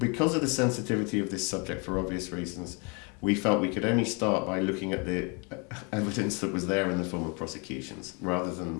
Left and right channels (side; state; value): right; quieter; 32.9 dB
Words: of the sensitivity of this subject, for obvious reasons, we felt we could only start by looking at the evidence that was there in the form of prosecutions, rather